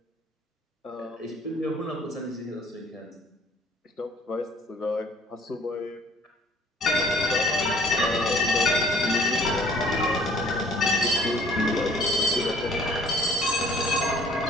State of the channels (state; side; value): normal; both; correlation 0.56